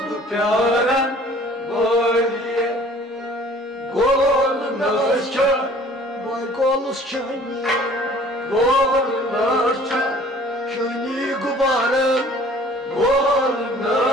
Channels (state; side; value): normal; both; correlation 0.52